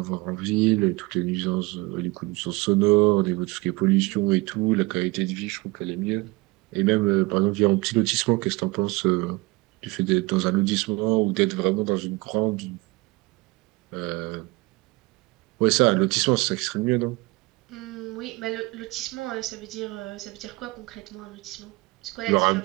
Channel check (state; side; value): quieter; left; 23.8 dB